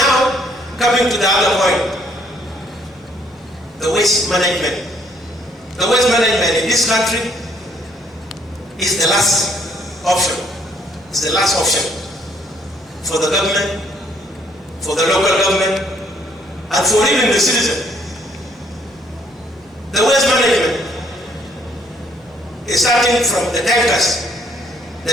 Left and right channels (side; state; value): both; normal; correlation 0.66